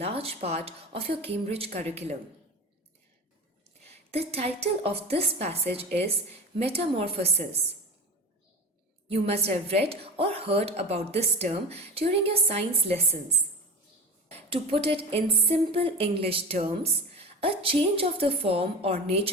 part of your Cambridge curriculum. The title of this passage is Metamorphosis. You must have read or heard about this term during your science lessons. To put it in simple English terms, a change of the form or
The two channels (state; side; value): normal; both; correlation 0.29